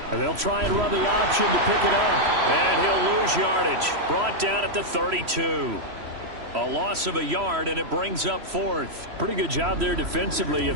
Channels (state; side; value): late; left; 3.0 ms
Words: And they'll try and run the option to pick it up. And he'll lose yardage. Brought down at the 32. A loss of a yard, and it brings up 4th. Pretty good job there defensively